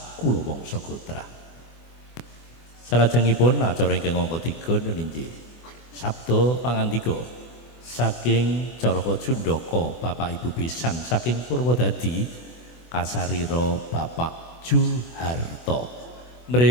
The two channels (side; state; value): right; late; 24 ms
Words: wangsa Gotra. Salajengipun acara ingkang angka 3 ninggih sabda pangandika saking Caraka Jundaka Bapak Ibu Besan saking Purwodadi kasarira Bapak Juharto.